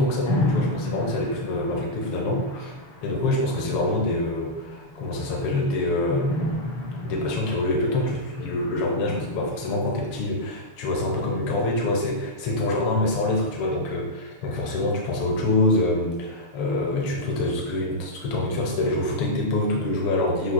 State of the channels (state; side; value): late; right; 6.9 ms